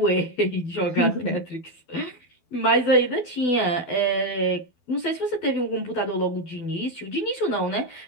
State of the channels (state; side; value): late; right; 12 ms